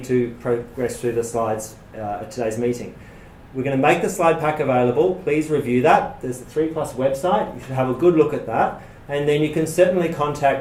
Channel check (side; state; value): both; identical; correlation 1.00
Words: to progress through the slides at today's meeting. We're going to make the slide pack available. Please review that. There's the 3+ website. You should have a good look at that. And then you can certainly